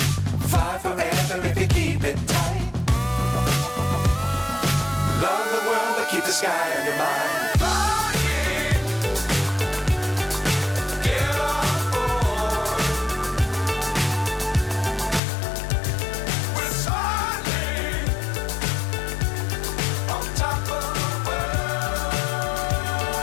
Fly forever if you keep it tight. Love the world but keep the sky on your mind.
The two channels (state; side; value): drops out; right; at 15.2 s